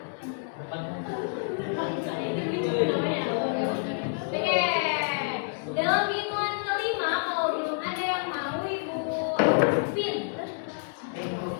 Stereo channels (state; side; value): silent; right; 59 dB below the other